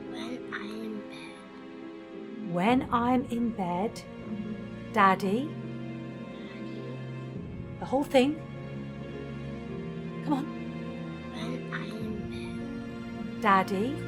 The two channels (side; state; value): both; identical; correlation 1.00